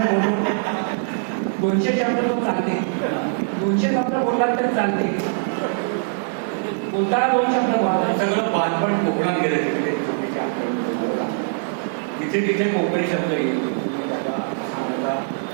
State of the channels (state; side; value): silent; left; digital silence